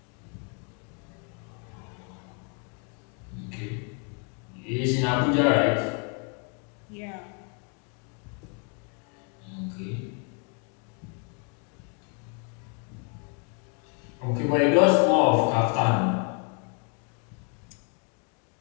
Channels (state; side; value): quieter; right; 38.8 dB